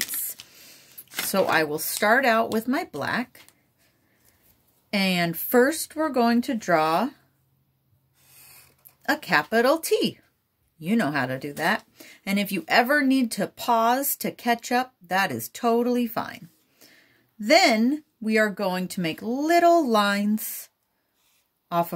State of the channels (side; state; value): both; identical; correlation 1.00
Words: So I will start out with my black, and first we're going to draw a capital T. You know how to do that. And if you ever need to pause to catch up, that is totally fine. Then we are going to make little lines off